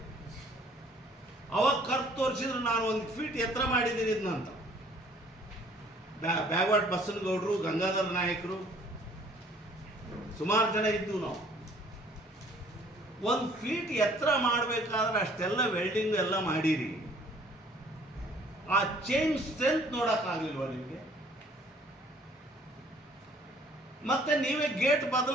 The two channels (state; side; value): normal; both; correlation 0.57